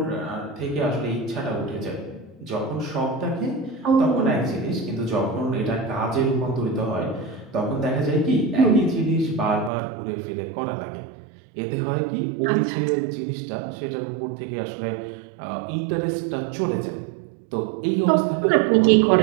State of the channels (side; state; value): left; drops out; at 9.7 s